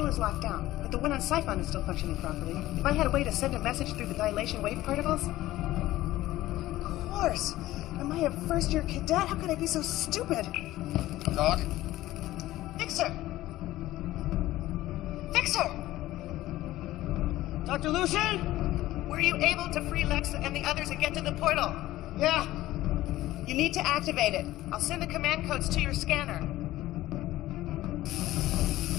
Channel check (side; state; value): right; quieter; 15.9 dB